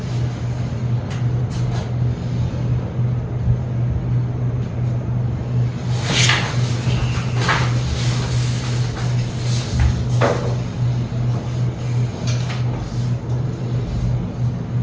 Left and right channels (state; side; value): identical; both; correlation 1.00